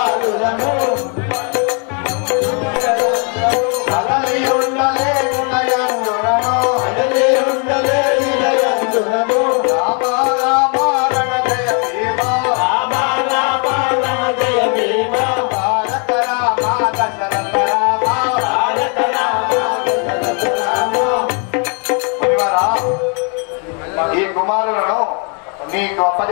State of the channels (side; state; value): right; quieter; 37.9 dB